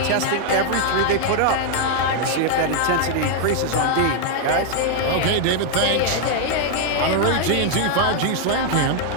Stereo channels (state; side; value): different; both; correlation 0.00